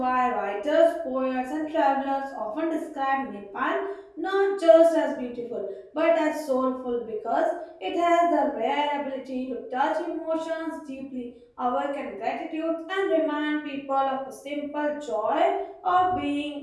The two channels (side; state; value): both; identical; correlation 1.00